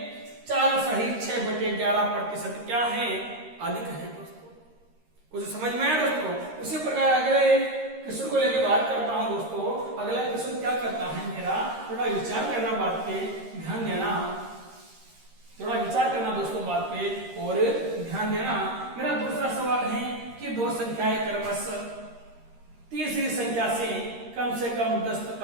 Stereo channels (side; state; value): left; late; 13 ms